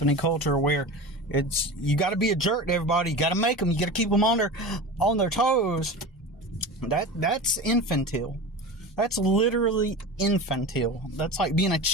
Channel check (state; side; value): normal; both; correlation 0.30